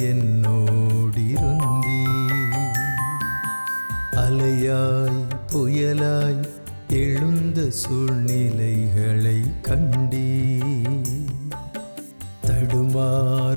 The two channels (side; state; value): both; inverted; correlation -1.00